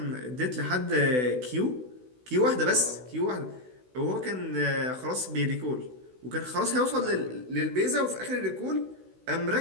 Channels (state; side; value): late; left; 16 ms